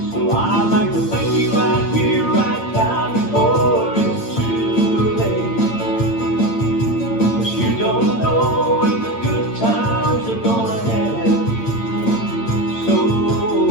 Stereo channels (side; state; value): right; late; 8.8 ms